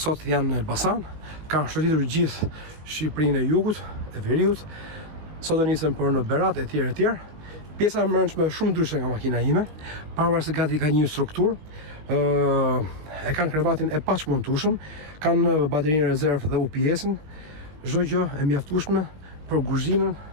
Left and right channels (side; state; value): left; late; 19 ms